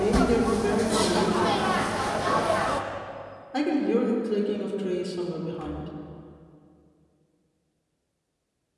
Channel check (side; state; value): both; identical; correlation 1.00